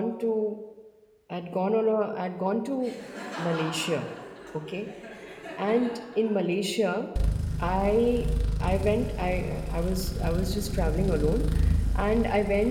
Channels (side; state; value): both; identical; correlation 1.00